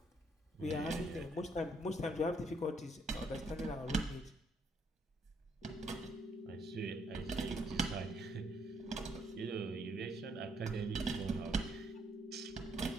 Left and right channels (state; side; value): normal; both; correlation 0.72